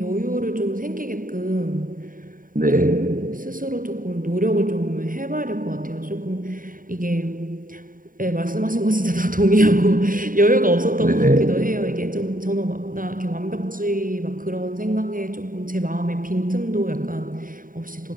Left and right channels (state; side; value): late; left; 0.40 ms